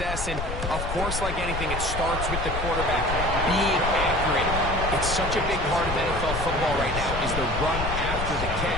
And, of course, like anything, it starts with the quarterback being accurate. It's such a big part of NFL football right now is the run after the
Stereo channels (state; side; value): noise; left; rumble, 4 dB below the sound